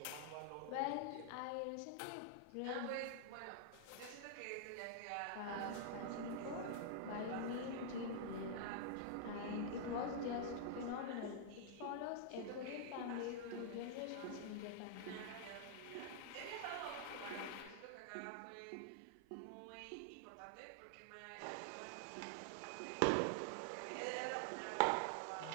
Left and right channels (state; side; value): different; both; correlation -0.01